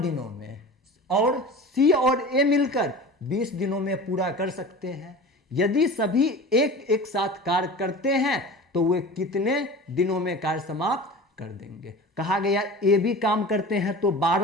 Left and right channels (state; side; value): normal; both; correlation 0.36